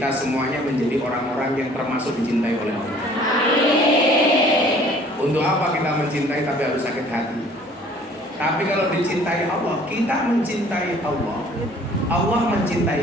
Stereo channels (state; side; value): normal; both; correlation 0.54